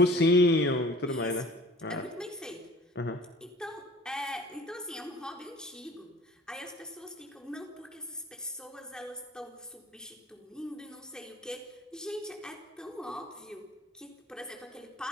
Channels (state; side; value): normal; both; correlation 0.46